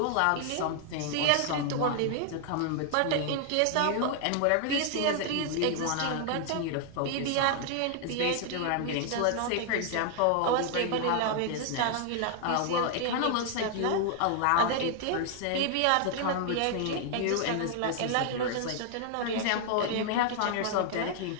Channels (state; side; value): different; both; correlation 0.00